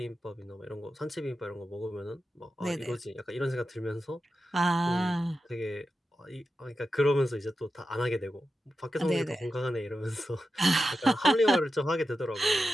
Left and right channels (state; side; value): normal; both; correlation 0.91